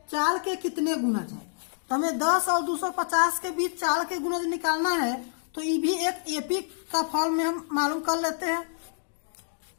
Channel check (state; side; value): silent; right; digital silence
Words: चाल के कितने गुणज है। तो हमें 10 और 250 के बीच चाल के गुणज निकालना है। तो ये भी एक एपी का फॉर्म में हम मालूम कर लेते हैं।